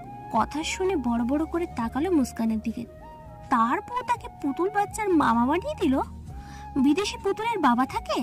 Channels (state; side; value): identical; both; correlation 1.00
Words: কথা শুনে বড় বড় করে তাকালো মুস্কানের দিকে। তারপর তাকে পুতুল বাচ্চার মামা বানিয়ে দিল। বিদেশি পুতুলের বাবা থাকে?